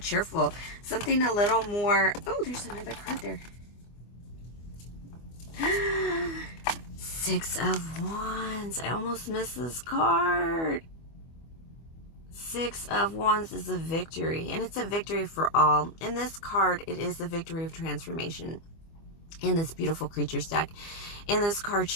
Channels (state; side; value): late; right; 24 ms